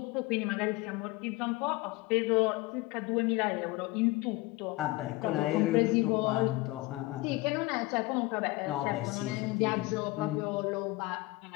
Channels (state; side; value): quieter; right; 21.1 dB